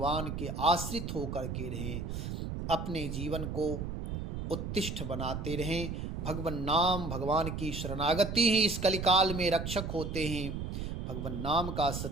के आश्रित होकर के रहें, अपने जीवन को उत्तिष्ठ बनाते रहें। भगवान नाम, भगवान की शरणागति ही इस कलिकाल में रक्षक होते हैं। भगवान नाम का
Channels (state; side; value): noise; right; rumble, 4 dB below the sound